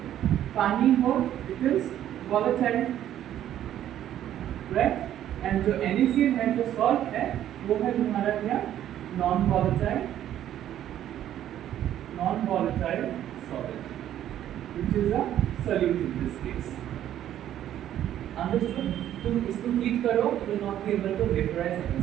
पानी हो, it is volatile, right? And जो NaCl है, जो salt है, वो है हमारा क्या? non-volatile solid, which is a solute in this case. Understood? तुम इसको हीट करो, you will not be able to vaporize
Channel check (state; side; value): quieter; left; 11.5 dB